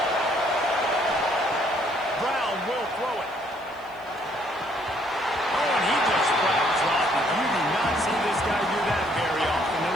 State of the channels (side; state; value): left; noise; hiss, 30 dB below the sound